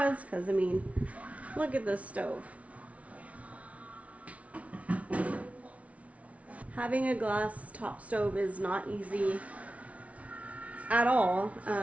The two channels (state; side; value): late; left; 0.066 ms